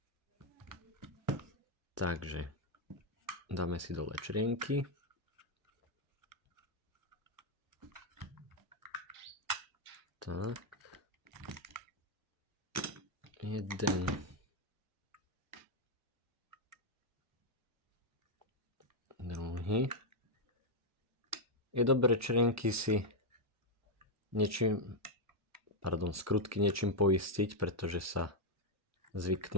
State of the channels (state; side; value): normal; both; correlation 0.00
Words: Takže dáme si dole črienky. Tak. Jeden. Druhý. Je dobré črienky si skrutky niečím poistiť, pretože sa